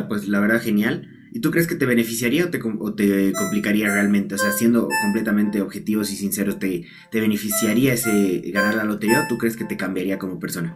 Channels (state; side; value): identical; both; correlation 1.00